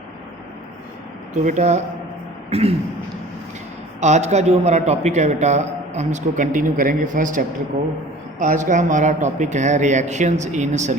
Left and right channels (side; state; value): both; normal; correlation 0.45